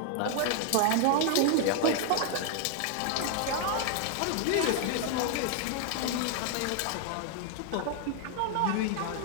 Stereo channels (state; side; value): different; both; correlation 0.00